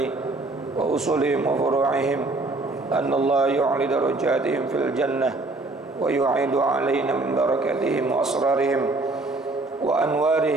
wa usulihim wa furu'ihim anna Allah yu'li darajatihim fil jannah wa yu'idu alaina min barakatihim wa asrarihim wa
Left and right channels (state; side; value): quieter; left; 3.1 dB